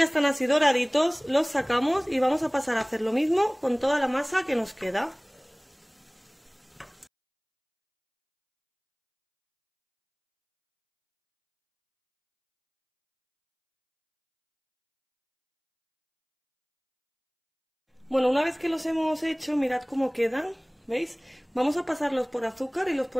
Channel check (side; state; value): both; identical; correlation 1.00